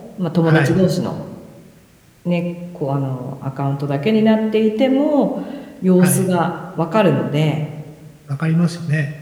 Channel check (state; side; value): identical; both; correlation 1.00